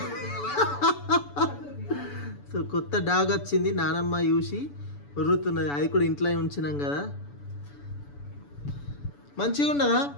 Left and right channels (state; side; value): late; right; 7.0 ms